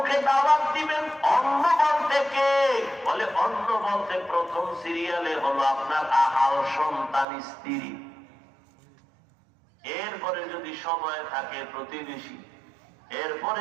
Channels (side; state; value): left; drops out; at 7.2 s